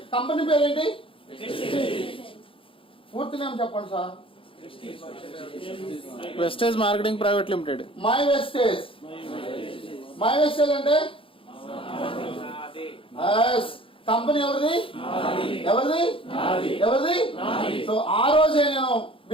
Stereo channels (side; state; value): right; late; 0.26 ms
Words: కంపెనీ పేరేంటి? పూర్తి నేమ్ చెప్పండి sir. Vestige marketing private limited. My Vestige. My Vestige అంటే కంపెనీ ఎవరిది? ఎవరిది? సో ఆ రోజే నేను